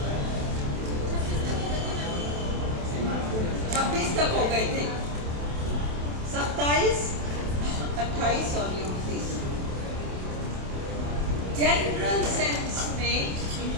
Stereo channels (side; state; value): left; late; 27 ms